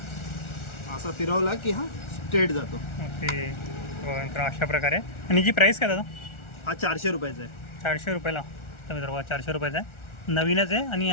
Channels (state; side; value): late; right; 1.4 ms